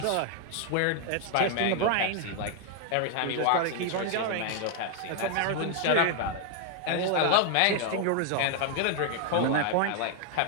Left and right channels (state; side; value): different; both; correlation 0.00